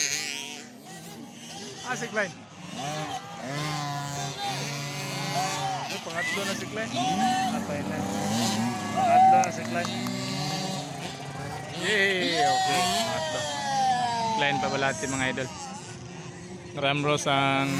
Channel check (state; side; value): identical; both; correlation 1.00